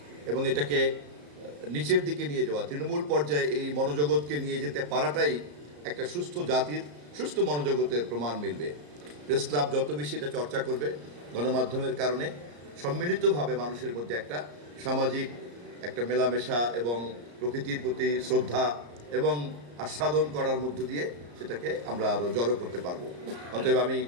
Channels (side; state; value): left; late; 34 ms